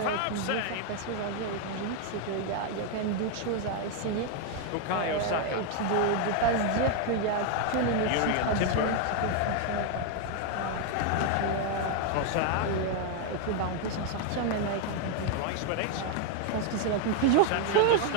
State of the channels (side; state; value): both; different; correlation 0.01